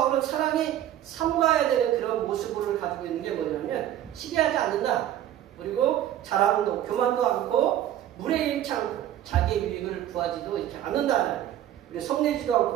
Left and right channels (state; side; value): quieter; left; 12.0 dB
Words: 사랑이 삼가야 되는 그런 모습을 가지고 있는 게 뭐냐면 시기하지 않는다. 그리고 자랑도 교만도 않고 물에 잃지 않고 자기의 유익을 구하지도 이렇게 않는다. 그리고 성내지도